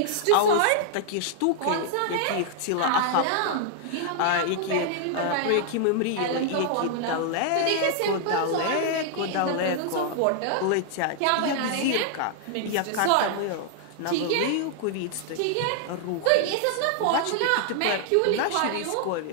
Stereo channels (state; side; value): different; both; correlation -0.01